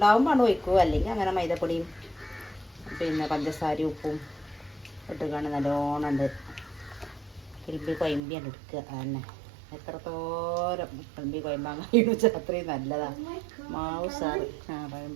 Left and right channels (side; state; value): left; drops out; at 8.2 s